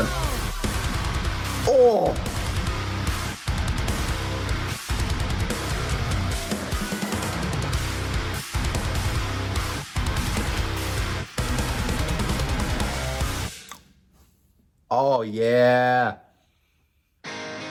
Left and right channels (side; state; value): both; identical; correlation 1.00